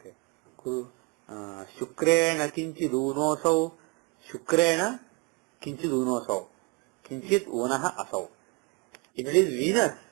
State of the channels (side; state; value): left; quieter; 31.7 dB